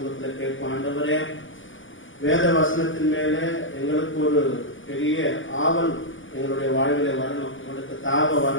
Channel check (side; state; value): right; late; 0.57 ms